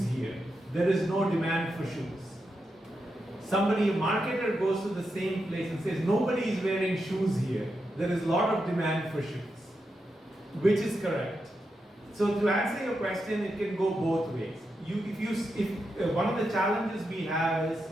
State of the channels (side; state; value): both; normal; correlation 0.86